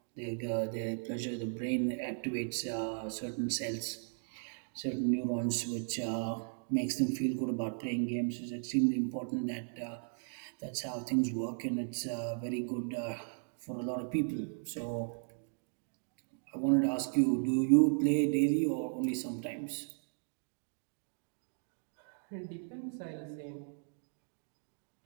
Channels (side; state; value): left; silent; digital silence